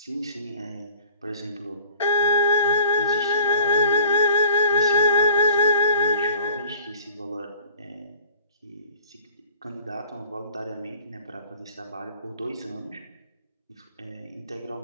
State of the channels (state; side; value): inverted; both; correlation -0.48